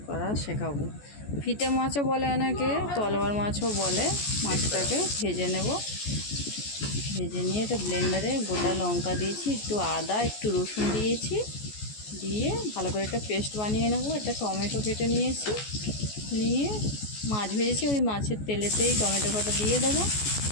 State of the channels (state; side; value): late; right; 14 ms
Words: করা শেখাবো। ফিতে মাছও বলে অনেকে, তলোয়ার মাছও বলে। মাছটাকে ভেজে নেব। ভেজে নিয়ে এটা ব্লেন্ডারে গোটা লঙ্কা দিয়েছি, একটু আদা, একটু রসুন দিয়েছি, দিয়ে ভালো করে একটা পেস্ট বানিয়ে নেব। একটা টমেটো কেটে নিয়েছি, নিয়ে মাছ ভেজেছি ওই মাছের তেলেতেই টমেটো কাটা দিয়ে দেবো।